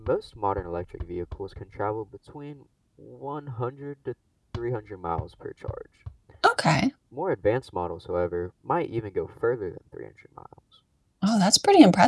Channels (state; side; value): identical; both; correlation 1.00